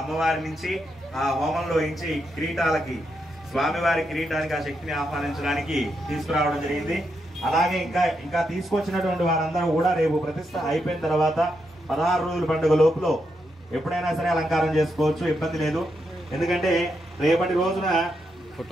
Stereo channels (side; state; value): both; normal; correlation 0.82